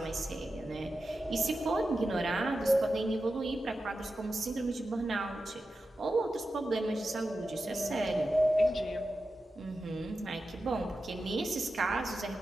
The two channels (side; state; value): both; normal; correlation 0.91